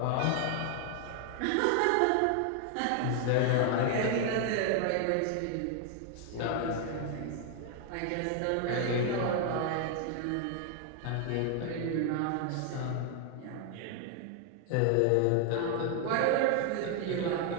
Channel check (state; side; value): different; both; correlation 0.00